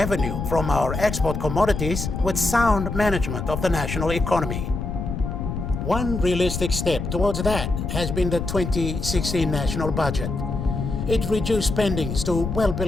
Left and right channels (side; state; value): left; noise; rumble, 4 dB below the sound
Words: from our export commodities with sound management of the national economy. One realistic step towards that has been the 2016 national budget. It reduced spendings to well